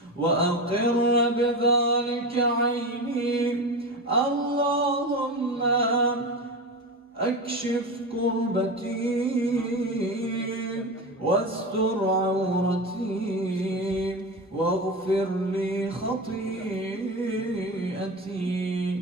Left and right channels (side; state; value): both; normal; correlation 0.23